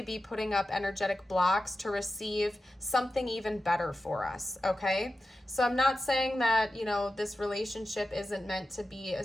be putting up energetic blocks to receive something even better for us, okay? So I'm not saying that, you know, this relationship isn't meant to be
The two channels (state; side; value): normal; both; correlation 0.92